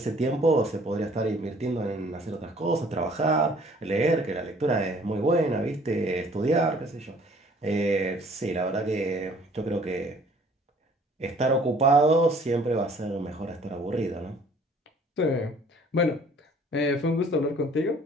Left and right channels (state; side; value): normal; both; correlation 0.56